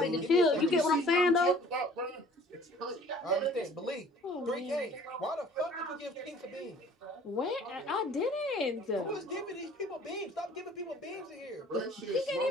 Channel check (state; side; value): normal; both; correlation 0.52